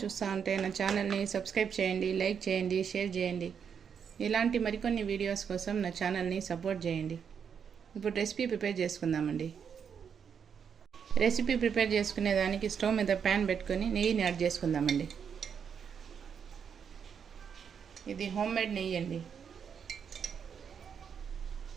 ఉంటే నా ఛానల్ని సబ్స్క్రైబ్ చేయండి, లైక్ చేయండి, షేర్ చేయండి. ఇలాంటి మరికొన్ని వీడియోస్ కోసం నా ఛానల్ని సపోర్ట్ చేయండి. ఇప్పుడు రెసిపీ ప్రిపేర్ చేసుకుందామండి. రెసిపీ ప్రిపేర్ చేసుకునేదానికి స్టవ్ మీద ప్యాన్ పెట్టుకొని నెయ్యిని యాడ్ చేసుకుందామండి. ఇది హోమ్మేడ్ నెయ్యి అండి.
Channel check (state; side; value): quieter; left; 7.2 dB